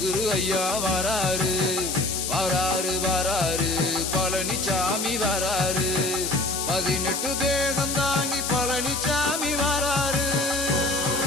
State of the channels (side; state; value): left; noise; hiss, 2 dB below the sound